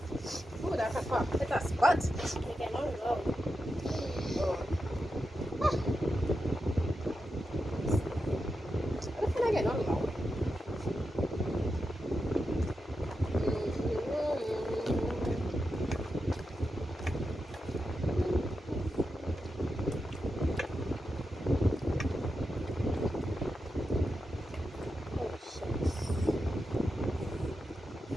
Ooh, that's a pop. It's a spot. They cannot go. Oh. What can I get on now?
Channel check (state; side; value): normal; both; correlation 0.88